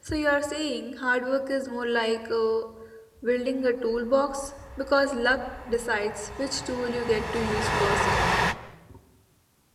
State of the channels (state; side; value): identical; both; correlation 1.00